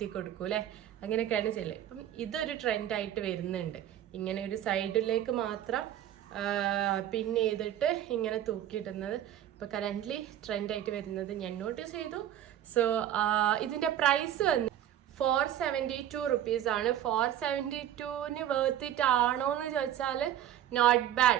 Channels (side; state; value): left; quieter; 11.4 dB